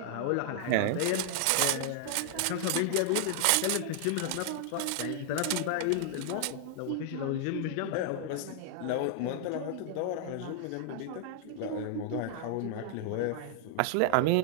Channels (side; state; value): both; different; correlation 0.00